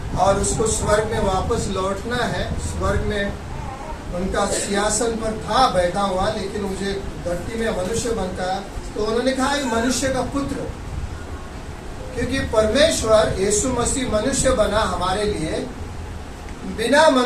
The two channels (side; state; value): both; identical; correlation 1.00